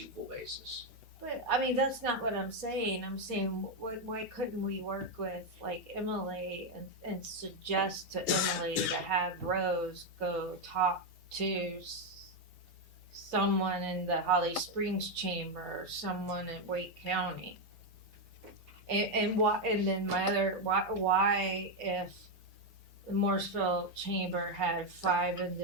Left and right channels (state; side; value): normal; both; correlation 0.04